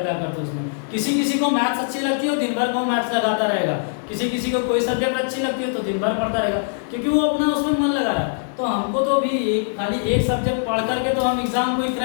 करते उसमें। किसी किसी को मैथ्स अच्छी लगती है, दिन भर को मैथ्स लगाता रहेगा, किसी किसी को कोई सब्जेक्ट अच्छी लगती है तो दिन भर पढ़ता रहेगा, क्योंकि वो अपना उसमें मन लगा है। तो हमको तो भी खाली एक सब्जेक्ट पढ़ करके तो हम एग्जाम को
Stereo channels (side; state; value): right; silent; digital silence